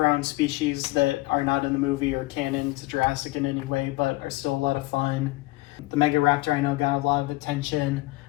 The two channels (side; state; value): right; quieter; 20.7 dB